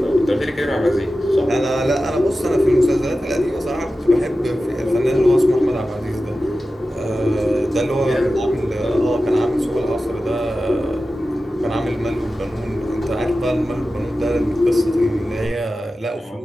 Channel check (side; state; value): both; normal; correlation 0.94